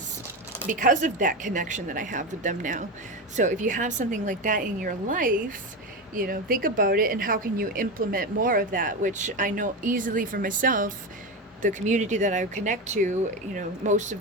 of that connection that I have with them now. So if you have something like that in your life, you know, think about it and how can you implement more of that, which I know easily for myself. The community that I connect to, you know, most of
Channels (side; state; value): both; normal; correlation 0.18